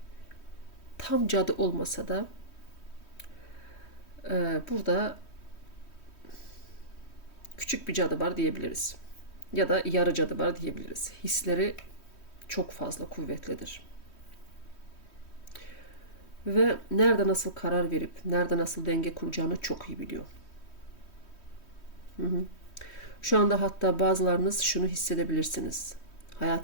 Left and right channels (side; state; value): right; late; 3.1 ms